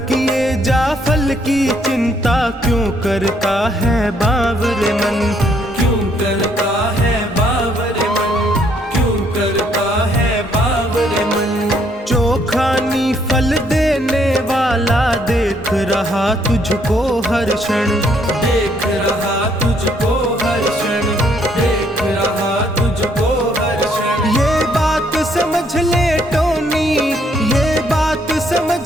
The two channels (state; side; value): normal; both; correlation 0.69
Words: किए जा फल की चिंता क्यों करता है बावरे मन, क्यों करता है बावरे मन, क्यों करता है बावरे मन। चोखानी फल देने वाला देख रहा तुझको हर क्षण, देख रहा तुझको हर क्षण, देख रहा तुझको हर क्षण। ये बात समझ ले टोनी, ये बात समझ